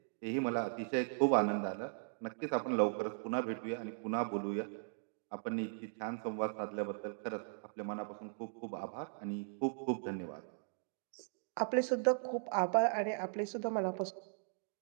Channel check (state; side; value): silent; left; digital silence